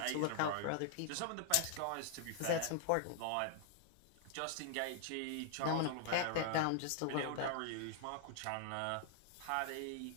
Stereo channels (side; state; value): both; different; correlation 0.00